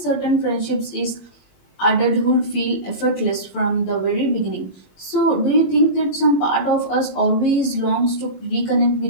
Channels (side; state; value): right; late; 21 ms